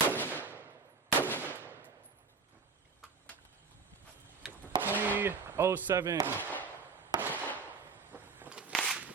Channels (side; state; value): left; quieter; 4.8 dB